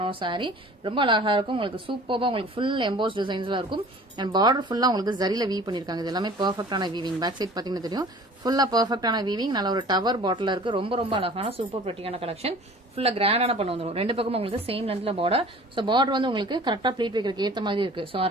ஒரு சாரி. ரொம்ப அழகா இருக்கும். உங்களுக்கு சூப்பரா உங்களுக்கு ஃபுல் எம்போஸ் டிசைன்ஸ்ல இருக்கும். அண்ட் பார்டர் ஃபுல்லா உங்களுக்கு ஜரில வீவ் பண்ணிருக்காங்க. இது எல்லாமே பெர்ஃபெக்டான வீவிங். பேக் சைட் பாத்தீங்கன்னா தெரியும், ஃபுல்லா பெர்ஃபெக்டான வீவிங். நல்ல ஒரு டவர் பாட்டில் இருக்கு. ரொம்ப ரொம்ப அழகான சூப்பர் பிரிட்டியான கலெக்ஷன். ஃபுல்லா கிராண்டான பண்ண வந்துடும். ரெண்டு பக்கம் உங்களுக்கு சேம் லென்த்ல பார்டர். ஸோ பார்டர் வந்து உங்களுக்கு கரெக்டா ப்ளீட் வைக்கிறதுக்கு ஏத்த மாதிரி இருக்கு. ஸோ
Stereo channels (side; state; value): both; normal; correlation 0.46